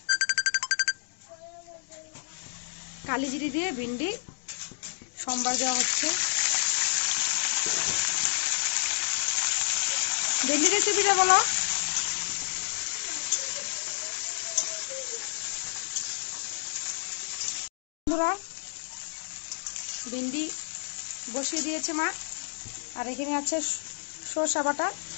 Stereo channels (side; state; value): right; silent; digital silence